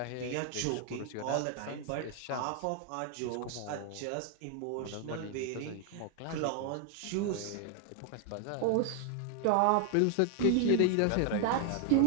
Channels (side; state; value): both; different; correlation 0.00